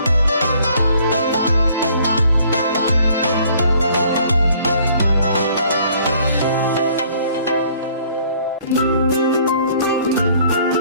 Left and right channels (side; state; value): both; inverted; correlation -0.59